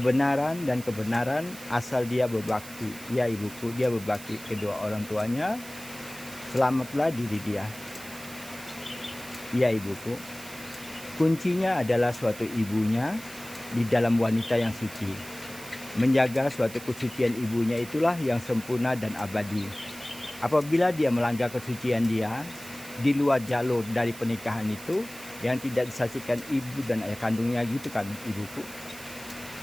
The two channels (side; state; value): right; noise; hiss, 15 dB below the sound